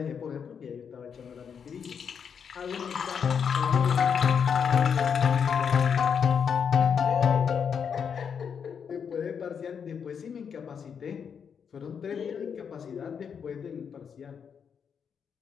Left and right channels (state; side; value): quieter; right; 7.0 dB